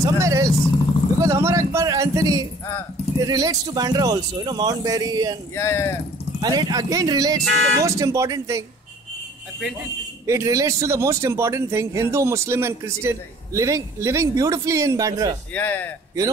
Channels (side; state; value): both; normal; correlation 0.53